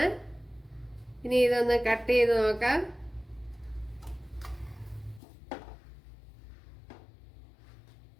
ഇനി ഇതൊന്ന് കട്ട് ചെയ്ത് നോക്കാം.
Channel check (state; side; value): drops out; right; at 5.2 s